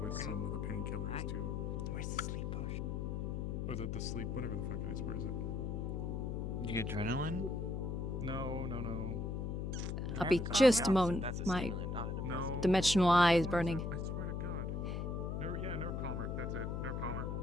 with some of the painkillers too. Where's the sleep potion? Or the sleep, whatever the fuck it is. Where is it? You get adrenaline? No. I'll be just a moment. My dimensional eye is burning. I swear to God. Nerve calmer. That's it. Nerve calmer.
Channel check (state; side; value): noise; left; hum, 2 dB below the sound